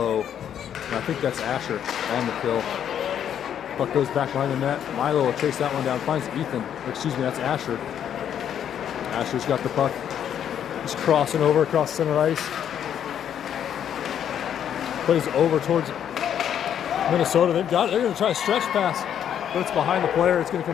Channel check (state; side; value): quieter; right; 9.4 dB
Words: and I think that's Asher on the kill. Puck goes back behind the net. Milo will chase that one down, finds Ethan. Excuse me, that's Asher. Asher's got the puck. He's crossing over across center ice. Plays over towards Minnesota. They've got it. They're going to try a stretch pass, but it's behind the player. It's going to